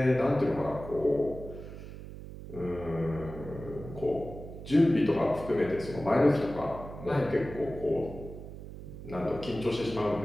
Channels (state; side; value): noise; right; hum, 12 dB below the sound